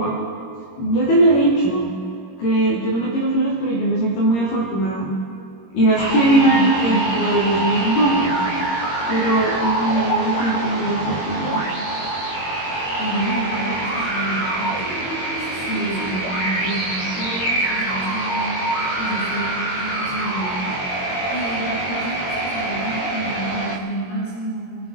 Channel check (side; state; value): right; late; 22 ms